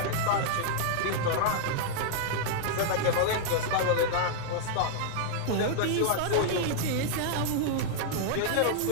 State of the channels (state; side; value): different; both; correlation -0.01